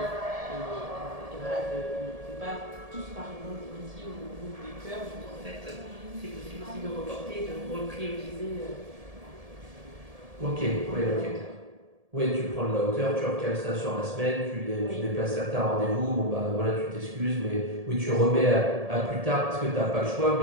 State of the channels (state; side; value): late; left; 1.7 ms